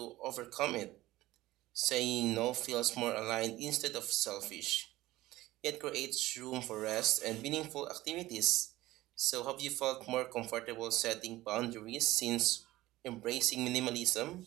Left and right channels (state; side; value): quieter; left; 17.2 dB